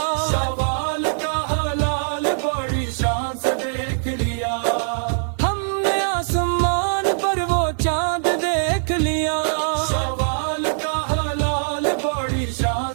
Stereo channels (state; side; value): silent; left; digital silence